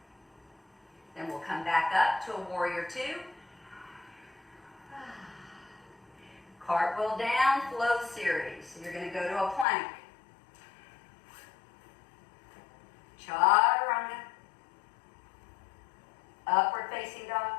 Then we'll come back up to a warrior 2. Cartwheel down, flow series. So you're going to go to a plank. Chaturanga. Upward facing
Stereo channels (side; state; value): right; drops out; at 9.7 s